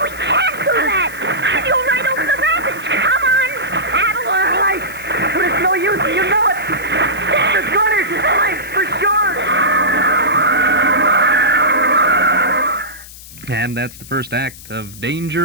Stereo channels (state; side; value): noise; left; hiss, 17 dB below the sound